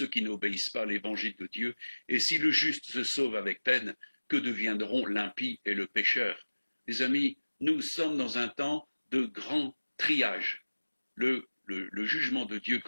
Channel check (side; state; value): both; inverted; correlation -1.00